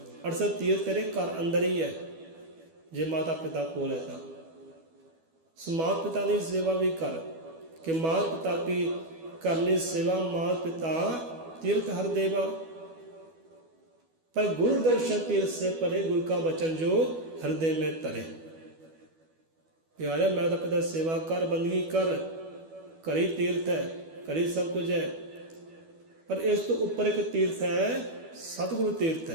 68 ਤੀਰਥ ਤੇਰੇ ਘਰ ਅੰਦਰ ਹੀ ਹੈ ਜੇ ਮਾਤਾ ਪਿਤਾ ਕੋਲ ਹੈ ਤਾਂ। ਸੋ ਮਾਤਾ ਪਿਤਾ ਦੀ ਸੇਵਾ ਵੀ ਕਰ कि मात पिता की करनी सेवा मात पिता तीर्थ हर देवा, पर गुरु दर्शन तीर्थ से परे गुरु का वचन जो हृदय में तरे। प्यारे माता पिता सेवा कर, बंदगी कर, करी तीर्थ है, करी सब कुछ है, पर इस तो ऊपर एक तीर्थ है सतगुरु तीर्थ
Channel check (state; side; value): late; left; 12 ms